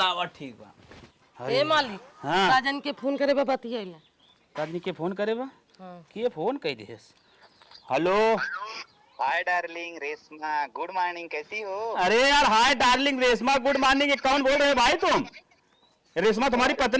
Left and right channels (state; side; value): identical; both; correlation 1.00